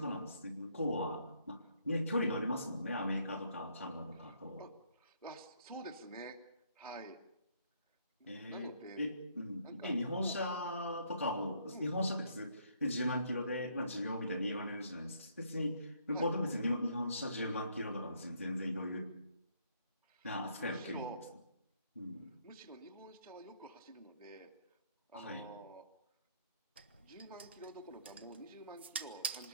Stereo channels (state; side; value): inverted; both; correlation -0.69